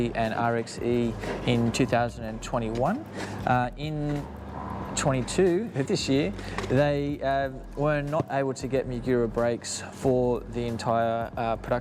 and RXE in 2021. In 22 this year, they were not able to get Magura brakes for the entire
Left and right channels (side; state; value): both; identical; correlation 1.00